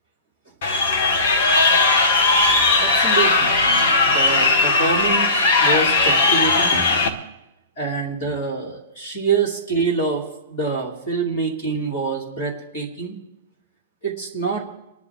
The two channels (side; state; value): both; inverted; correlation -0.32